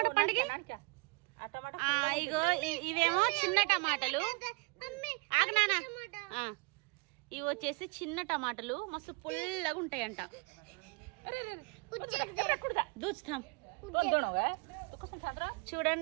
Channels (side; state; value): left; quieter; 30.6 dB